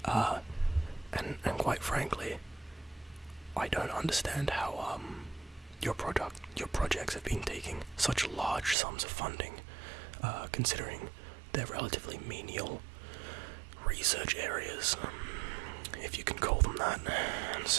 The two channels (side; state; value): left; drops out; at 8.8 s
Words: And quite frankly, I don't understand how your projects have been taking such large sums of funding, considering they're relatively menial research areas, if you can call them that. And